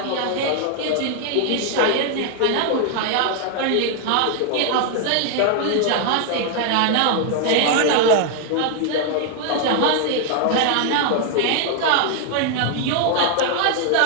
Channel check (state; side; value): different; both; correlation 0.00